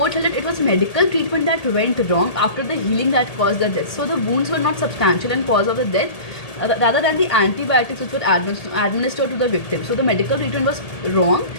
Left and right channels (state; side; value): late; right; 1.8 ms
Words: held that it was medical treatment that went wrong after the healing that caused the death. So the wounds were not substantial and cause of the death, rather than the antibiotics which were administered to the victim. So the medical treatment was wrong.